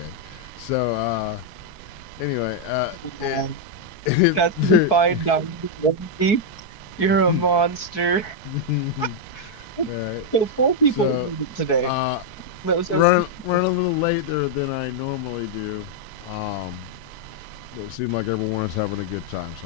So anyway, That's the fine dining. You're a monster. All right. So 4 people So, today. Running a little later than I normally do. But it seemed like everyone was having a good time,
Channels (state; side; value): late; right; 4.6 ms